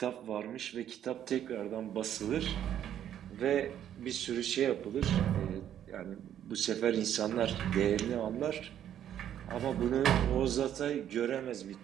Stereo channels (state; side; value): quieter; left; 10.4 dB